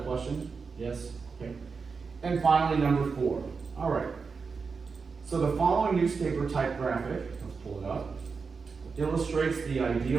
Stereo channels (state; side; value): quieter; left; 5.0 dB